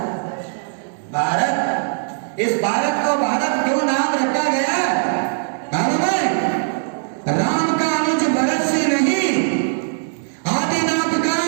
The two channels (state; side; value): silent; left; digital silence